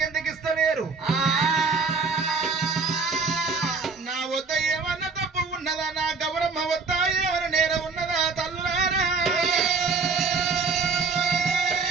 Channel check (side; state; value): left; quieter; 4.5 dB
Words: ఇస్తలేరు? నా వద్ద ఏమన్నా తప్పు ఉన్నదా? నా గౌరమ్మ వద్ద ఏమైనా నేరం ఉన్నదా? తల్లులారా